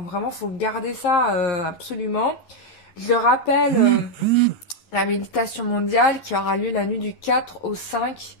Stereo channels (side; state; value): right; late; 11 ms